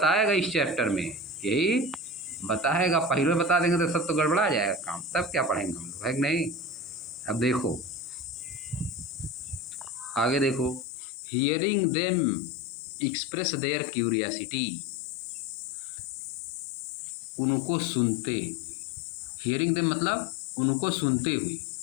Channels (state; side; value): drops out; right; at 10.9 s